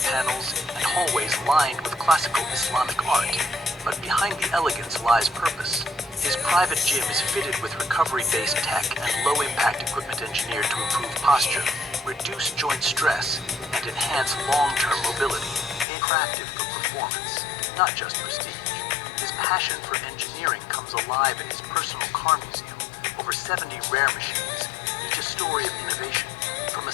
panels, and hallways lined with classical Islamic art. But behind the elegance lies purpose. His private gym is fitted with recovery-based tech and low-impact equipment engineered to improve posture, reduce joint stress, and enhance long-term mobility, crafted for performance, not just prestige. His passion for engineering comes alive in his personal car museum, over 70 rare machines, each a story of innovation, from a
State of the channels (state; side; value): drops out; right; at 15.9 s